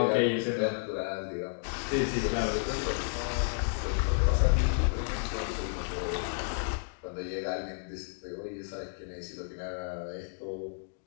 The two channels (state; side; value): silent; right; digital silence